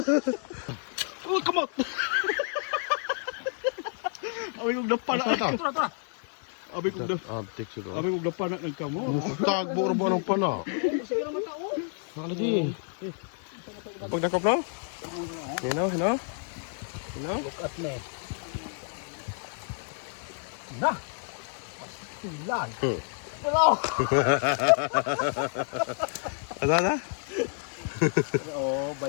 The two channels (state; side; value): silent; right; 58 dB below the other